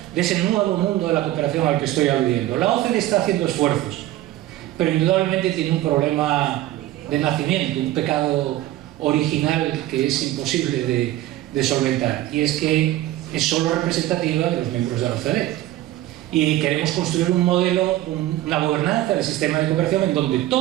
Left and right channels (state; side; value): quieter; left; 14.9 dB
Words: de ese nuevo mundo de la cooperación al que estoy aludiendo. La OCDE está haciendo esfuerzos, pero indudablemente tiene un problema de nacimiento, un pecado original que es imposible de solventar, y es que es solo representativa de los miembros de la OCDE. Y queremos construir un modelo, una gobernanza del sistema de cooperación en donde